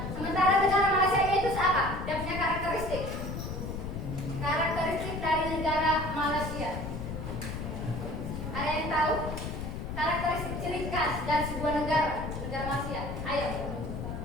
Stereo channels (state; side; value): noise; left; rumble, 6 dB below the sound